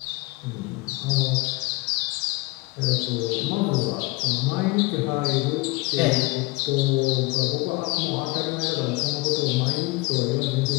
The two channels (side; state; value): right; quieter; 23.7 dB